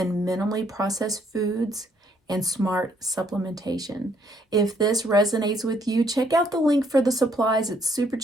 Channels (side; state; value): both; normal; correlation 0.68